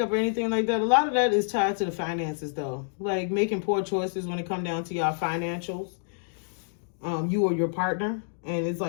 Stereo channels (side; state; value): right; silent; digital silence